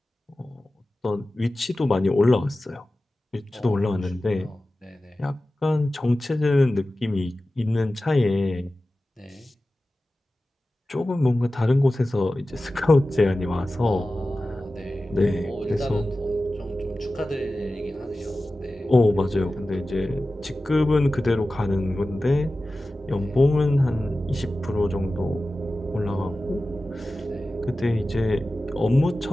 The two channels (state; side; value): normal; both; correlation 0.95